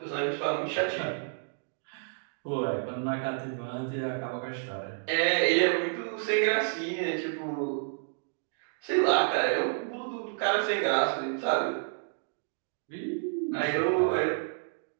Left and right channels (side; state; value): left; silent; digital silence